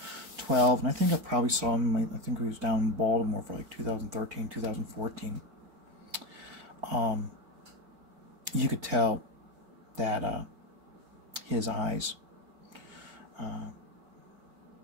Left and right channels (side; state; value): left; late; 4.5 ms